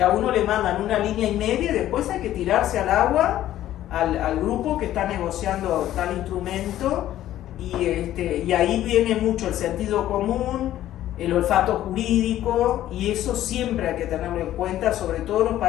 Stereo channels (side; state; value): right; quieter; 13.0 dB